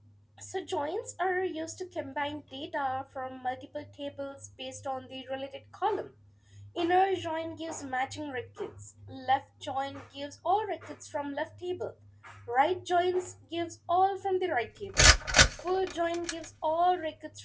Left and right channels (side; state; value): both; identical; correlation 1.00